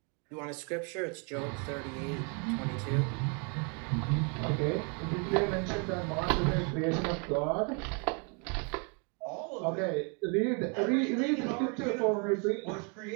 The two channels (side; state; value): left; quieter; 35.9 dB